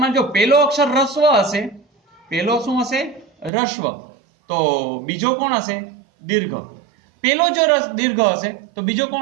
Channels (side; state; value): left; drops out; at 3.5 s